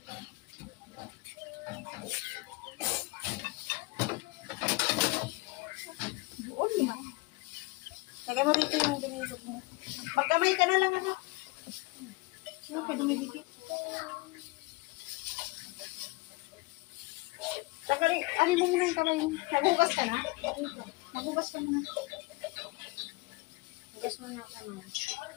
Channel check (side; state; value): right; quieter; 24.5 dB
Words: Buon na. Lagay mo dito yung binidok mo. Magkamay ka na lang, anak. Sino ka dumidikit? Tagalin, ano mo muna yung kamay mo? Nagugas ka na? Nagugas ka muna. Hugas mo na ako na.